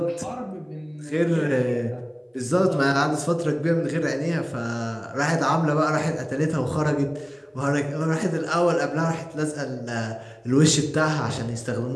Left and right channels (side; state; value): both; identical; correlation 1.00